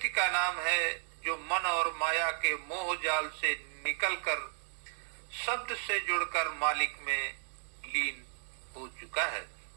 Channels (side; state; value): left; silent; digital silence